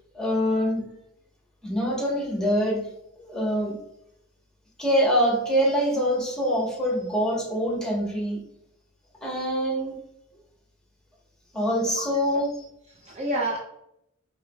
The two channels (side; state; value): both; normal; correlation 0.18